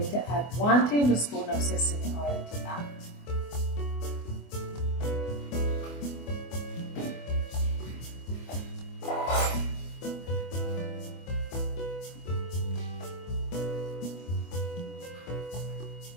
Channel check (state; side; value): late; right; 24 ms